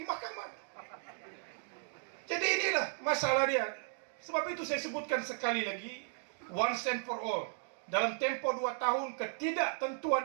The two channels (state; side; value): silent; left; digital silence